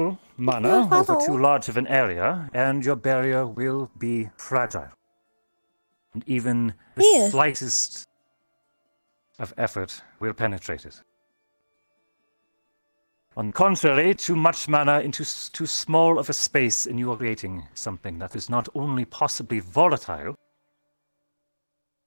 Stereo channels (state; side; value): inverted; both; correlation -1.00